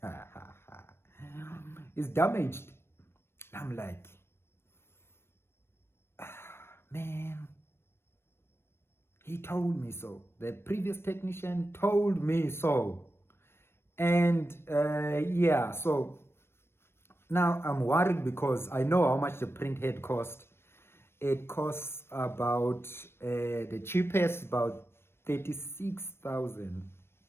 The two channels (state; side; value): late; right; 0.12 ms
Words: It's damaged. I'm like, man, he told me so. The previous technician told me so. And yeah, so now I'm worried because I know how much the print head cost. It costs about, the cheapest, about 36,000